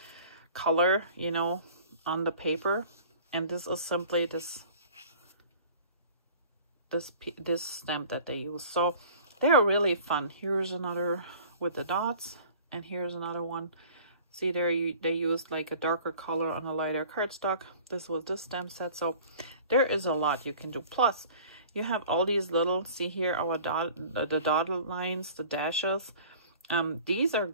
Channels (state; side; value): inverted; both; correlation -0.46